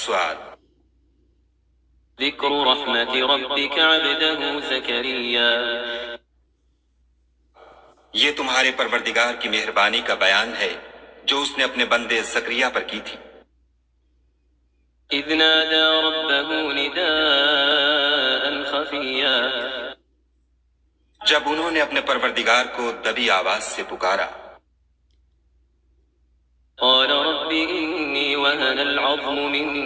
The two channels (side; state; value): both; identical; correlation 1.00